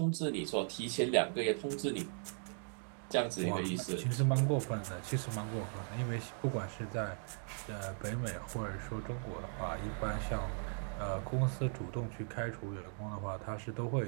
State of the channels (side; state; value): left; silent; 52 dB below the other